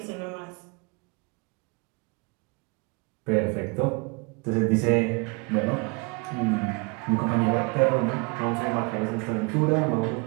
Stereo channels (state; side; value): quieter; left; 29.9 dB